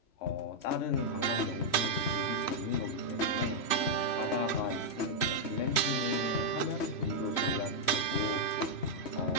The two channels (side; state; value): right; late; 3.1 ms